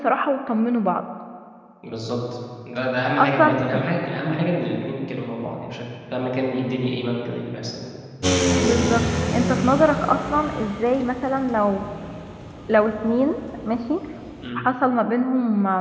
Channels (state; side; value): identical; both; correlation 1.00